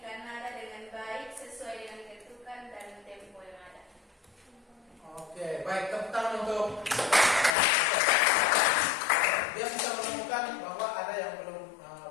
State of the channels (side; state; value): right; drops out; at 7.6 s